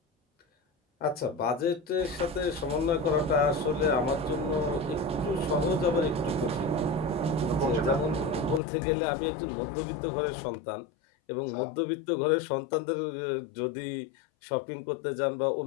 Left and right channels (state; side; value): drops out; right; at 8.6 s